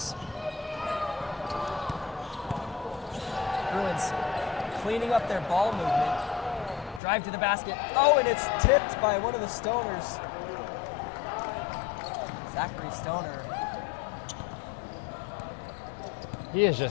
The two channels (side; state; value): right; drops out; at 7.0 s